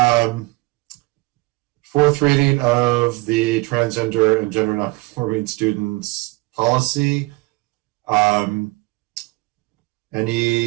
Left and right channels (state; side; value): quieter; left; 23.4 dB